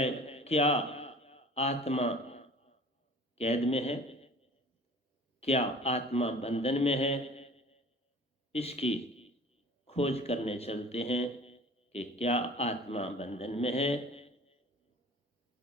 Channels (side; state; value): both; normal; correlation 0.45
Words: क्या आत्मा कैद में है, क्या आत्मा बंधन में है। इसकी खोज करने चलते हैं कि क्या आत्मा बंधन में है